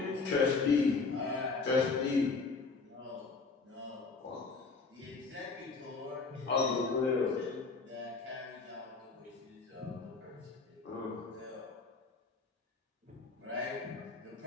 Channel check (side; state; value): right; quieter; 4.3 dB